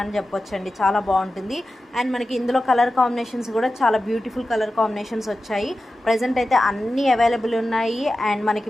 చెప్పొచ్చండి. చాలా బాగుంటుంది. అండ్ మనకి ఇందులో కలర్ కాంబినేషన్స్ కూడా చాలా బ్యూటిఫుల్ కలర్ కాంబినేషన్స్ వచ్చాయి. ప్రజెంట్ అయితే అన్నీ అవైలబుల్ ఉన్నాయి. అండ్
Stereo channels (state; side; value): normal; both; correlation 0.93